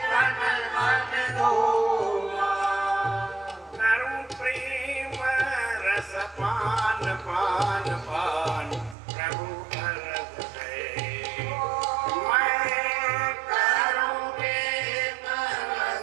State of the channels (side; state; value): left; drops out; at 9.0 s